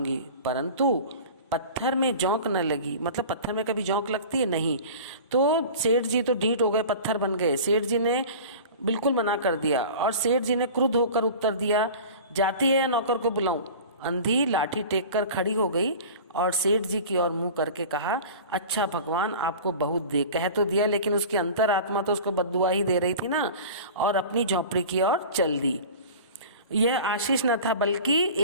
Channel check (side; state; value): both; inverted; correlation -0.37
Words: परंतु पत्थर में जोंक न लगी। मतलब पत्थर में कभी जोंक लगती है? नहीं। तो सेठ जी तो ढीठ हो गए, पत्थर बन गए। सेठ जी ने बिल्कुल मना कर दिया और सेठ जी ने क्रुद्ध होकर उत्तर दिया, जाती है या नौकर को बुलाऊं? अंधी लाठी टेक कर खड़ी हो गई और सेठ जी की ओर मुंह करके कहा, अच्छा भगवान आपको बहुत दे। कह तो दिया, लेकिन उसकी अंतरात्मा तो उसको बद्दुआ ही दे रही थी ना, और अपनी झोपड़ी की ओर चल दी। यह आशीष न था बल्कि